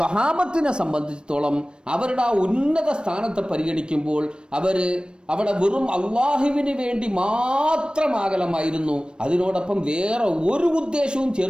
സംബന്ധിച്ചിടത്തോളം അവരുടെ ആ ഉന്നത സ്ഥാനത്തെ പരിഗണിക്കുമ്പോൾ അവിടെ വെറും അള്ളാഹുവിന് വേണ്ടി മാത്രമാകലമായിരുന്നു, അതിനോടൊപ്പം വേറെ ഒരു ഉദ്ദേശവും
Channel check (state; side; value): late; left; 0.053 ms